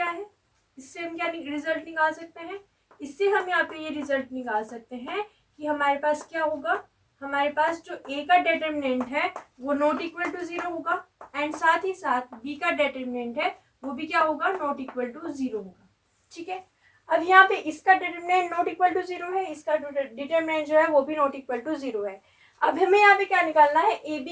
है, इससे हम क्या रिजल्ट निकाल सकते हैं, इससे हम यहाँ पे ये रिजल्ट निकाल सकते हैं कि हमारे पास क्या होगा, हमारे पास जो ए का डिटरमिनेंट है वो नॉट इक्वल टू 0 होगा, एंड साथ ही साथ बी का डिटरमिनेंट है वो भी क्या होगा, नॉट इक्वल टू 0 होगा। ठीक है, अब यहाँ पे इसका डिटरमिनेंट नॉट इक्वल टू 0 है, इसका डिटरमिनेंट जो है वो भी नॉट इक्वल टू 0 है। अब हमें यहाँ पे क्या निकालना है, ए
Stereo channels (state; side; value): identical; both; correlation 1.00